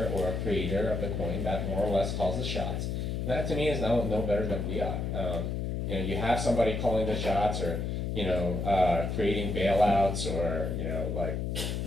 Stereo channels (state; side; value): noise; left; hum, 1 dB below the sound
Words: or a creator of the coin that more or less calls the shots. That to me is no better than fiat. You have somebody calling the shots, or creating bailouts, or like